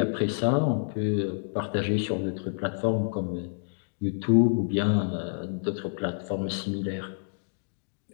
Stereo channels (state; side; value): silent; right; digital silence